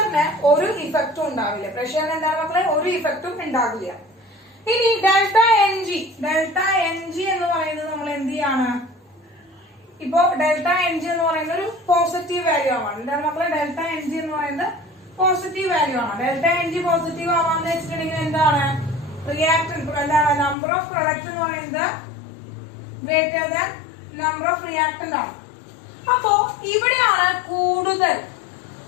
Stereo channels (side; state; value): right; drops out; at 20.6 s